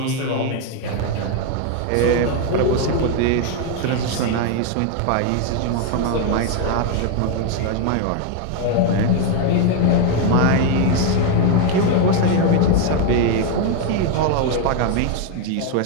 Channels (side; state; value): both; different; correlation 0.01